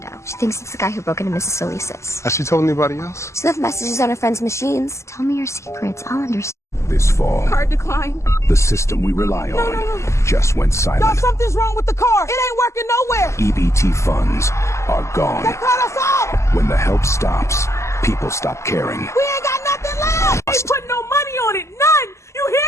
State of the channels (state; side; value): late; right; 0.13 ms